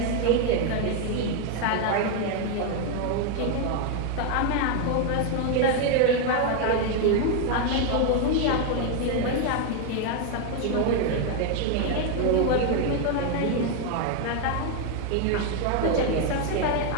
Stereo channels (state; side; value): different; both; correlation 0.01